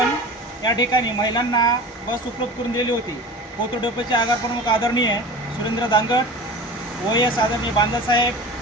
या ठिकाणी महिलांना बस उपलब्ध करून दिली होती. कोथरूड डेपोचे आगार प्रमुख आदरणीय सुरेंद्र दांगट, OS आदरणीय बांदसाहेब,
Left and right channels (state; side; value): normal; both; correlation 0.35